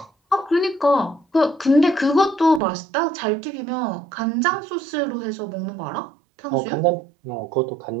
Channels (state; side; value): drops out; left; at 2.6 s